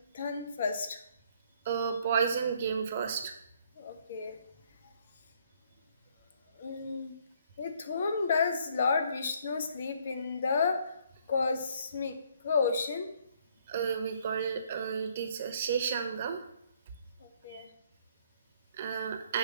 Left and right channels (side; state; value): both; inverted; correlation -0.65